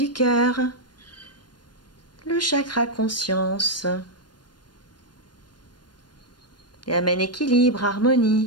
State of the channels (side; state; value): right; late; 0.71 ms